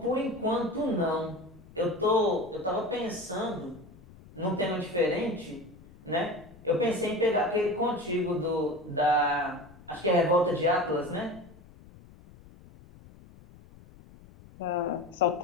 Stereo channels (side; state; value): left; noise; rumble, 22 dB below the sound